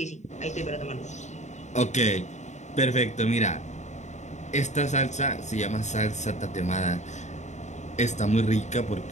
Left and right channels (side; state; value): right; late; 0.34 ms